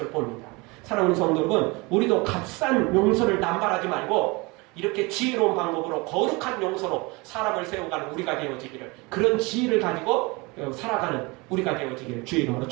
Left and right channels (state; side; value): quieter; left; 25.9 dB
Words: 봅니다. 사랑하는 성도 여러분, 우리도 값싼 용서를 남발하지 말고 이렇게 지혜로운 방법으로 거룩한 용서로 사람을 세워가는 우리가 되어지기를, 그런 지혜를 가지고 살아가는 우리가 되어지기를 주의 이름으로